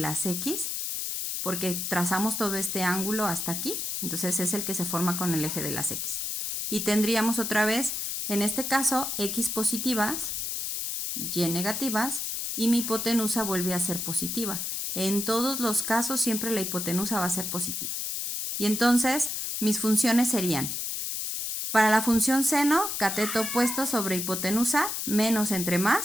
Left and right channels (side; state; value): left; noise; hiss, 3 dB below the sound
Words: X, porque trazamos todo este ángulo hasta aquí, entonces es el que se forma con el eje de las X. Y tendríamos otra vez, en este caso, X positivas, Y negativas, y mi hipotenusa vuelve a ser positiva. En todos los casos siempre la hipotenusa va a ser positiva. Y entonces mis funciones serían: para la función seno, cateto opuesto sobre hipotenusa, menos entre